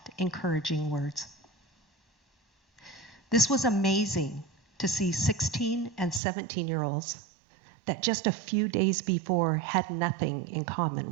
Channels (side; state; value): left; drops out; at 6.2 s